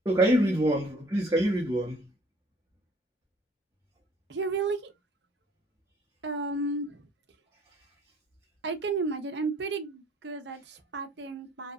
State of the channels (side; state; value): both; normal; correlation 0.56